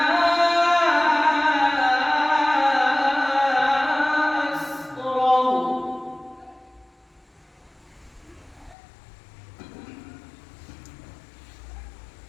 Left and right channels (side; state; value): right; drops out; at 8.8 s